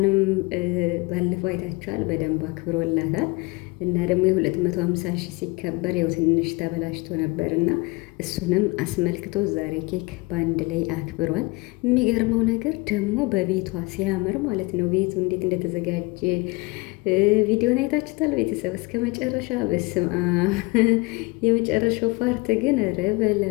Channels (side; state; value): right; quieter; 25.0 dB